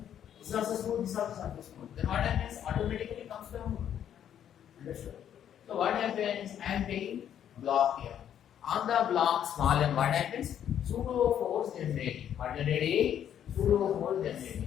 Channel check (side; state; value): right; quieter; 9.8 dB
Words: This is also smooth, this is also smooth. Then what happens? Automatically comes down. Understood? So what happens? I am taking block here. On the block small m, what happens? Pseudo force generating. What generating? Pseudo force